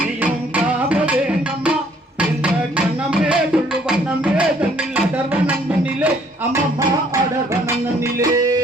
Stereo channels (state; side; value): normal; both; correlation 0.62